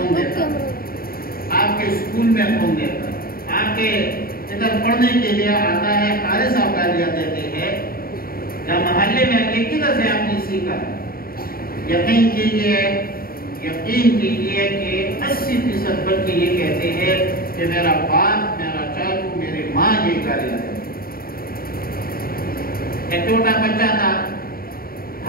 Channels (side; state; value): right; late; 0.43 ms